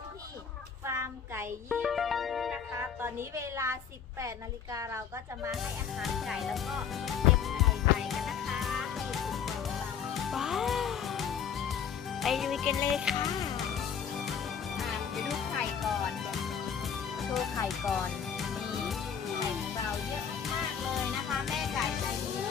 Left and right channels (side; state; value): right; quieter; 7.6 dB